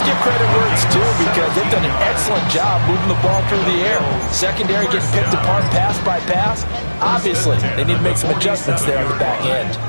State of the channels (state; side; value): inverted; both; correlation -1.00